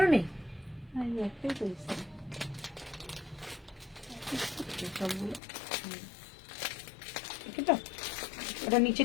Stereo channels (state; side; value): drops out; right; at 5.4 s